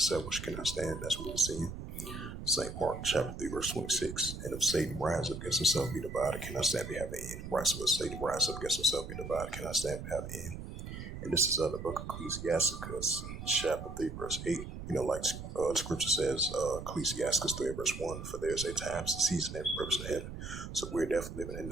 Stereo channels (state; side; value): noise; right; rumble, 9 dB below the sound